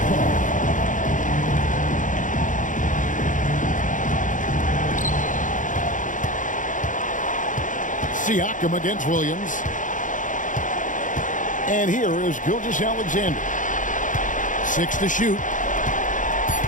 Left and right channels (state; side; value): late; right; 0.37 ms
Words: Siakam against Williams. And here is Gilgeous Alexander. 6 to shoot.